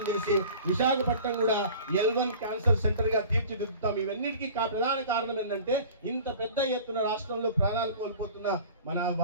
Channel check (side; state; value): both; inverted; correlation -0.43